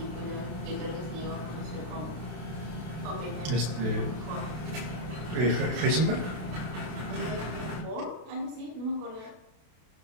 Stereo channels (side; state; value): left; late; 32 ms